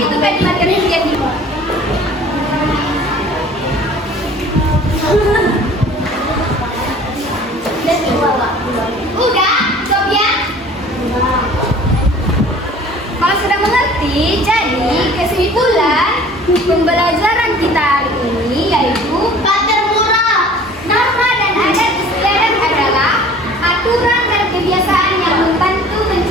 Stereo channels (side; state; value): both; normal; correlation 0.48